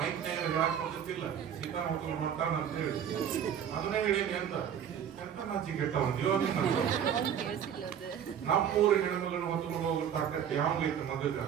ಮೈಕ್ ಹೇಳಕ್ ಹೋಗುತ್ತಿಲ್ಲ, ಸೀತಾನ ಹೊತ್ಕೊಂಡು ಮಾಡ್ತಾನ ಅಂತ ಹೇಳಿ ಅದನ್ನೇ ಹೇಳೇನಿ ಅಂತ ಎಂತ ನಾಚಿಗೆ ಕೆಟ್ಟವನ್ಯೋ ನೀನು. ನಮ್ಮೂರ ಹೆಣ್ಮಗಳನ್ನ ಹೊತ್ಕೊಂಡು ಹೋಗೋ ತಾಕತ್ ಯಾವ್ದೈತೆ ಮಗಗ?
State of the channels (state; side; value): quieter; left; 8.8 dB